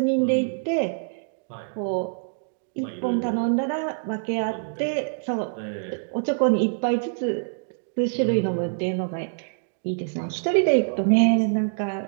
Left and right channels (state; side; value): silent; left; digital silence